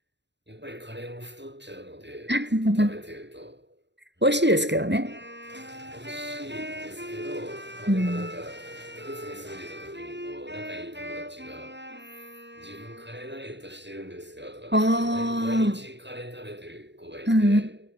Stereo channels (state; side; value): late; left; 0.51 ms